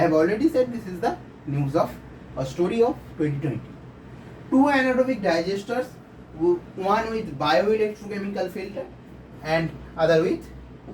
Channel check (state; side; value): identical; both; correlation 1.00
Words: have already said this is the news of a story of 2020. 2 anaerobic digesters, one with bioelectrochemical filter and other with